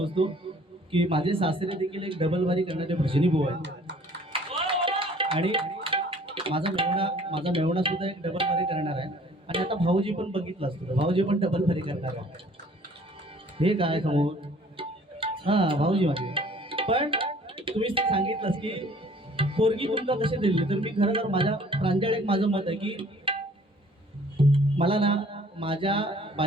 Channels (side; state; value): both; normal; correlation 0.54